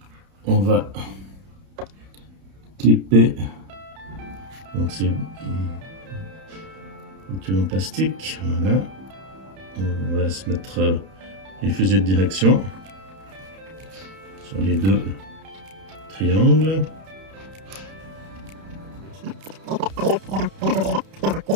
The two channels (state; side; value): late; left; 31 ms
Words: on va clipper. Donc c'est un tube en plastique. Voilà. On va se mettre les fusées de direction sur les deux triangles.